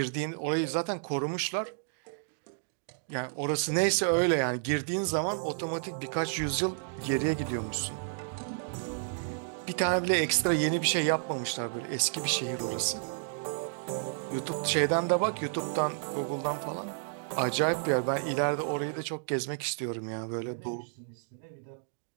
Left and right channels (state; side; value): silent; left; digital silence